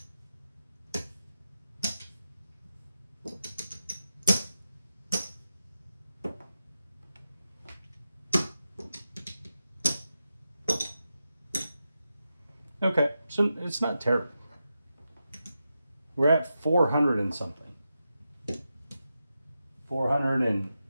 Okay, so it's not terrible. We're at 400 and something. $413.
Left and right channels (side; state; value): both; inverted; correlation -0.89